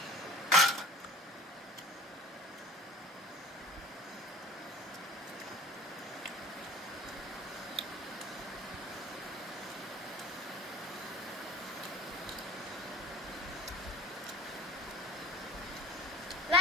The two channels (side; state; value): both; normal; correlation 0.41